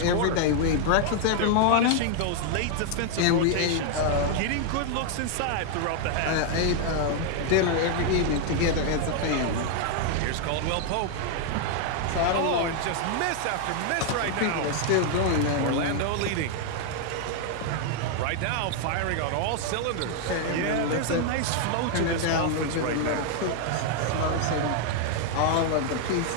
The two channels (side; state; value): both; different; correlation 0.00